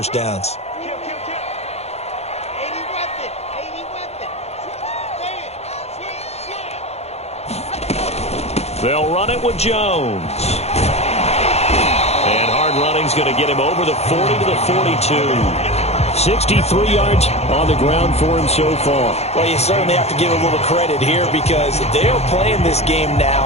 downs. They'll run it with Jones. And hard running's going to get him over the 40 to the 42. 63 yards on the ground for him so far. Well, you certainly have to give a little credit here because they're playing this game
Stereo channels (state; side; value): late; right; 0.31 ms